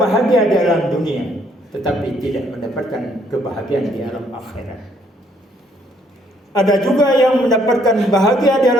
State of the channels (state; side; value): normal; both; correlation 0.67